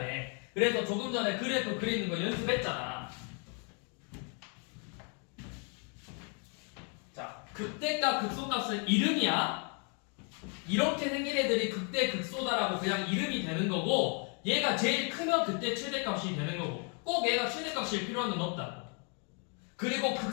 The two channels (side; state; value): right; quieter; 38.4 dB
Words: 그래서 조금 전에 그래프 그리는 거 연습했잖아. 자, 극대값 극소값은 이름이야. 이렇게 생긴 애들이 극대 극소다라고 그냥 이름이 되는 거고, 얘가 제일 크면 그때 최대값이 되는 거고, 꼭 얘가 최대값일 필요는 없다. 그리고